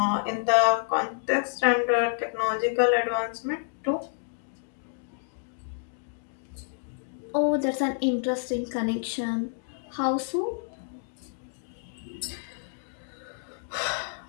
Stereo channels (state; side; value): silent; right; digital silence